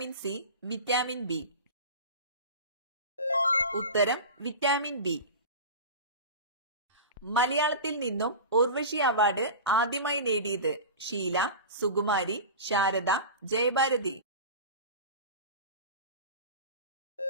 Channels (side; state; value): both; inverted; correlation -0.30